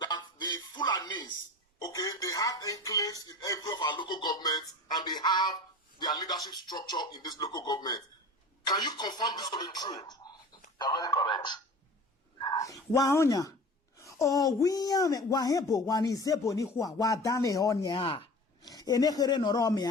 the Fulanis, okay, they have enclaves in every of our local governments and they have their leadership structure in this local government. Can you confirm this to be true? You're very correct. Waonya. O wiya wahebo wanizebo ni huwa wadane onya. Enekere noro me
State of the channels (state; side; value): normal; both; correlation 0.38